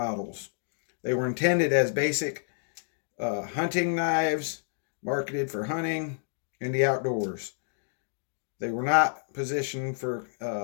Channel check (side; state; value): right; silent; digital silence